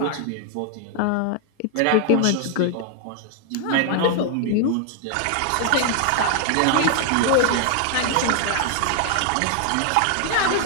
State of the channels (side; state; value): both; different; correlation 0.00